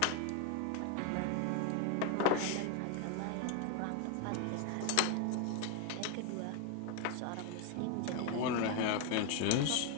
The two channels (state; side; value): different; both; correlation 0.01